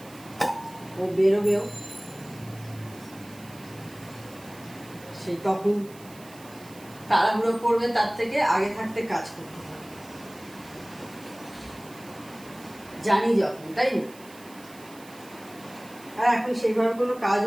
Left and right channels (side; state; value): right; noise; hiss, 21 dB below the sound